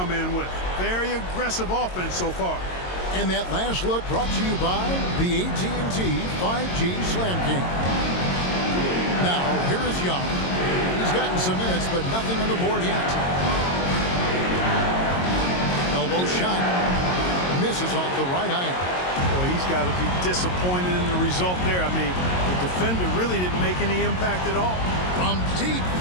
in with. Very aggressive offense so far. And that last look brought to you by the AT&T 5G Slam King. Now, here is Young. He's gotten some minutes, but nothing on the board yet. Elbow shot. Misses off the right eye. he's got to be disappointed in the result there. I mean, the defender really didn't make any impact at all. From deep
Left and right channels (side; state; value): right; late; 22 ms